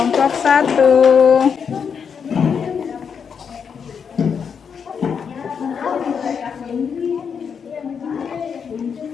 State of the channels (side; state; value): right; quieter; 6.7 dB